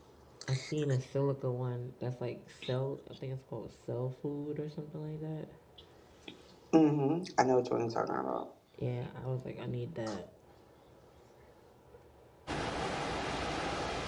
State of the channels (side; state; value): both; identical; correlation 1.00